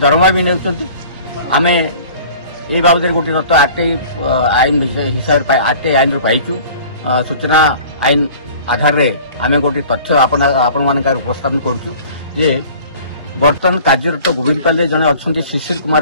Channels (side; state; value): both; inverted; correlation -0.46